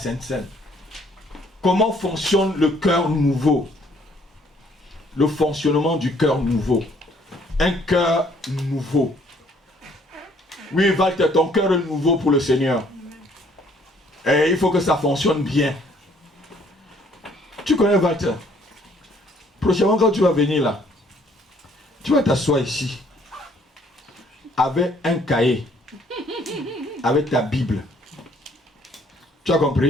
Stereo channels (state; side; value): normal; both; correlation 0.62